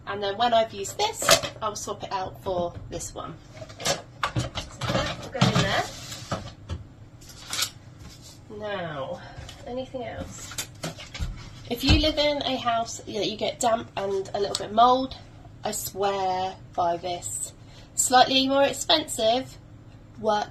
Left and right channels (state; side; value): identical; both; correlation 1.00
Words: and then when I've used this, I'll swap it out for this one. So that will go in there. Now, anything else? If you live in a house that you get damp and a little bit of mould, I swear by this. Slightly more expensive,